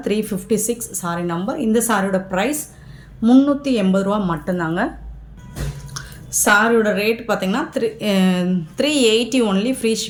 356 சாரீ நம்பர். இந்த சாரியோட ப்ரைஸ் 380 ரூபா மட்டும்தாங்க. சாரியோட ரேட் பார்த்திங்கன்னா 380 ஒன்லி ஃப்ரீ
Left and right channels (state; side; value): identical; both; correlation 1.00